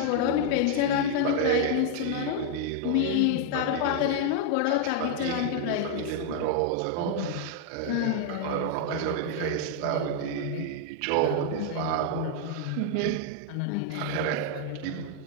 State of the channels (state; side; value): different; both; correlation 0.00